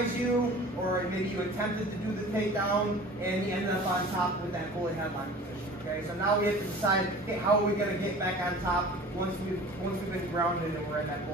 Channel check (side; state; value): both; normal; correlation 0.42